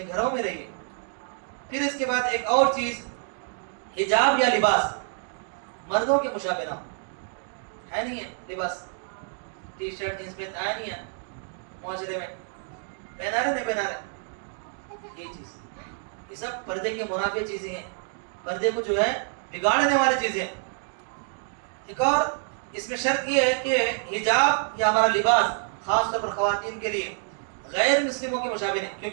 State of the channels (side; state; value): left; silent; 60 dB below the other